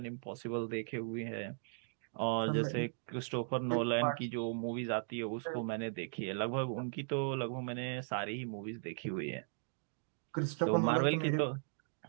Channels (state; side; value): silent; left; digital silence